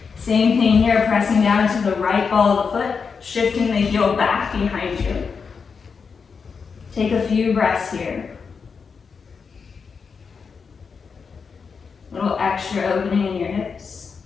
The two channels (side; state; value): right; quieter; 5.6 dB